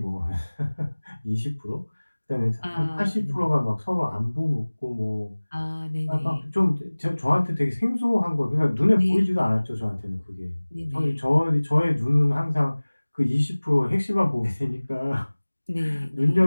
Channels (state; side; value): inverted; both; correlation -1.00